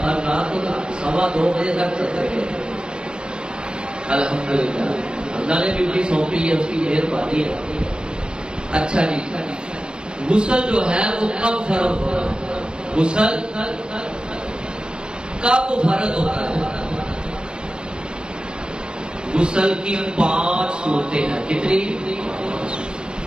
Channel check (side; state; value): left; late; 0.049 ms